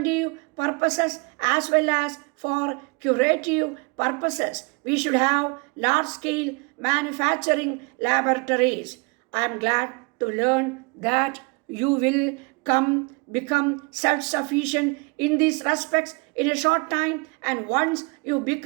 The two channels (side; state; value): left; quieter; 30.3 dB